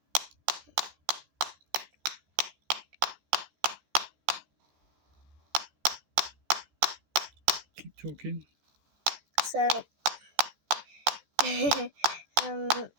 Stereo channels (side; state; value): left; late; 14 ms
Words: Keep talking. So,